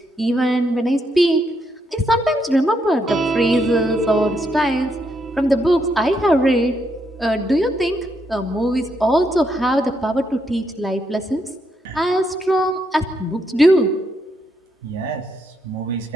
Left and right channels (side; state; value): both; normal; correlation 0.78